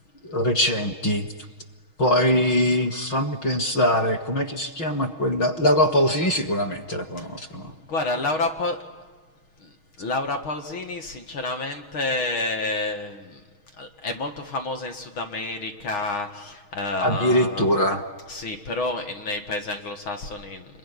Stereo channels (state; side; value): late; right; 6.3 ms